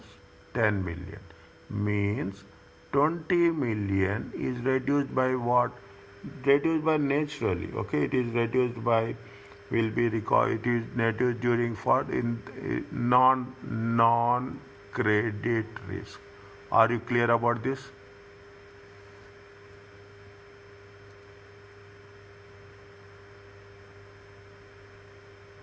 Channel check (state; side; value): identical; both; correlation 1.00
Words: 10 million. Means 20 million is reduced by what? Reduced by naturally. Okay, it is reduced by, will be recalled, it is reduced during for in non credit risk. Are you clear about this?